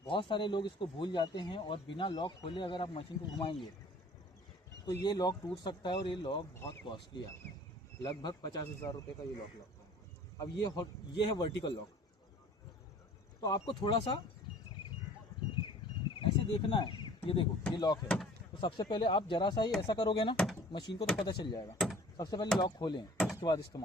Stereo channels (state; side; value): normal; both; correlation 0.49